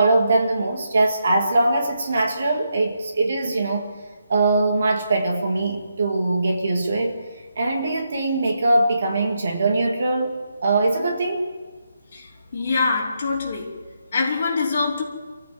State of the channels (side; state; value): both; inverted; correlation -0.81